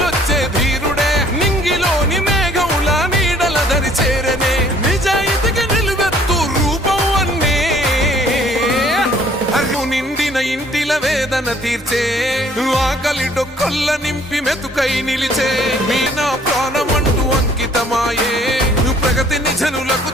ధీరుడే నింగిలోని మేఘముల నీడల దరి చేరనే నిజాయితీకి నిలువెత్తు రూపం అన్నే అర్రు నిండిన ఇంటిల వేదన తీర్చే ఆకలి డొక్కల్ల నింపి మెతుకై నిలిచే మీ నా ప్రాణమంటూ అంకితమాయే ప్రగతిని జనులకు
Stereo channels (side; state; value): both; normal; correlation 0.59